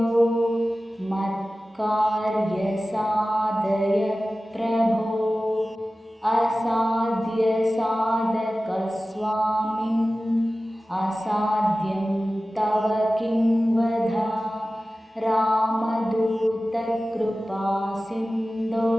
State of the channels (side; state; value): both; normal; correlation 0.96